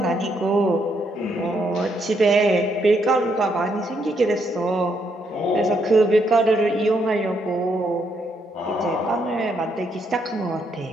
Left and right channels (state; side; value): normal; both; correlation 0.75